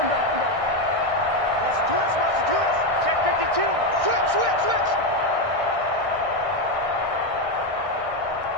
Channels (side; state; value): left; late; 1.6 ms